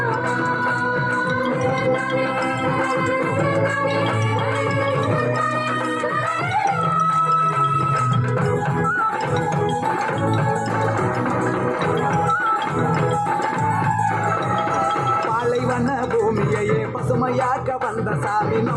பாலைவன பூமியையே பசுமையாக்க வந்த சாமி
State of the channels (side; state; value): both; identical; correlation 1.00